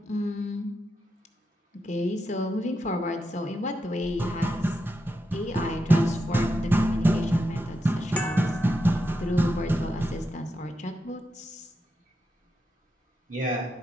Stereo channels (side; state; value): both; normal; correlation 0.86